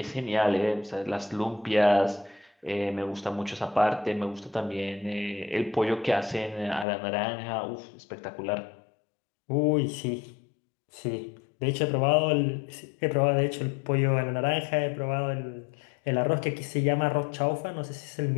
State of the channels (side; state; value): right; drops out; at 6.9 s